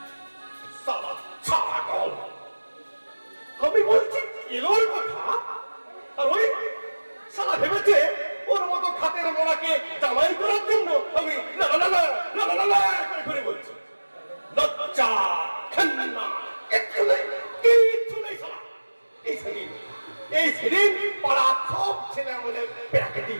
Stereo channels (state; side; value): inverted; both; correlation -1.00